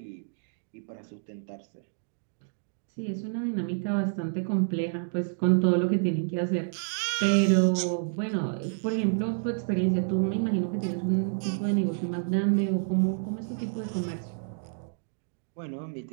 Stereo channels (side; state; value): left; silent; digital silence